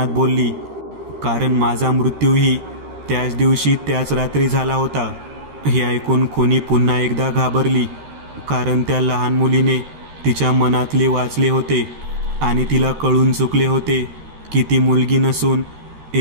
बोलली. कारण माझा मृत्यूही त्याच दिवशी त्याच रात्री झाला होता. हे ऐकून खुनी पुन्हा एकदा घाबरली, कारण त्या लहान मुलीने तिच्या मनातले वाचले होते आणि तिला कळून चुकले होते की ती मुलगी नसून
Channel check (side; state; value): left; late; 13 ms